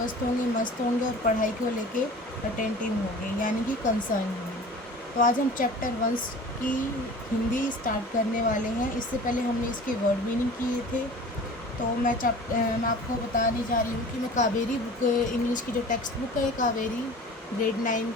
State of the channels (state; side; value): normal; both; correlation 0.41